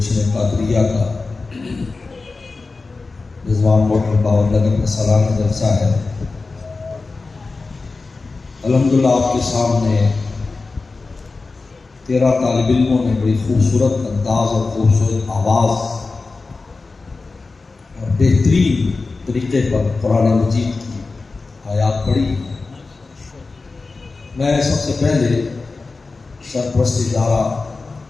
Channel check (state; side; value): quieter; right; 3.9 dB